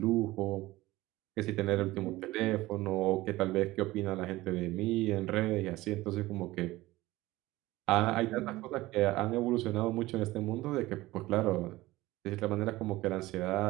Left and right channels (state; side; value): quieter; left; 18.4 dB